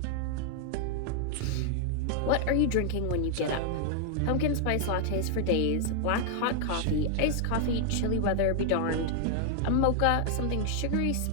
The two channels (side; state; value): both; different; correlation 0.00